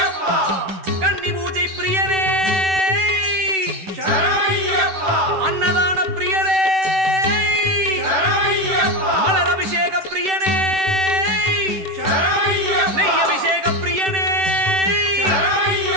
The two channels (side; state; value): left; late; 10 ms